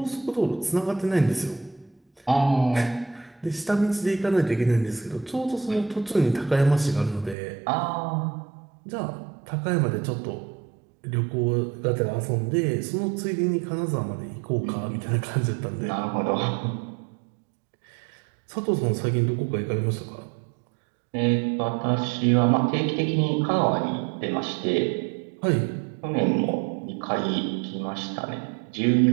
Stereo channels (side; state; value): left; drops out; at 7.4 s